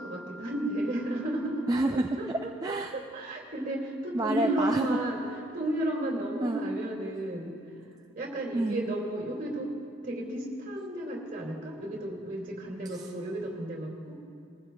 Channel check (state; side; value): normal; both; correlation 0.68